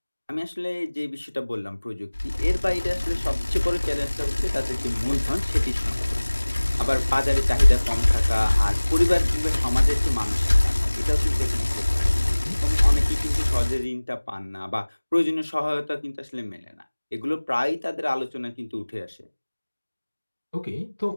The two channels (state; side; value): inverted; both; correlation -1.00